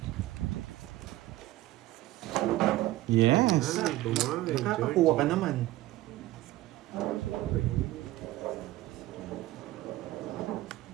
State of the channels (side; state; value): left; quieter; 16.6 dB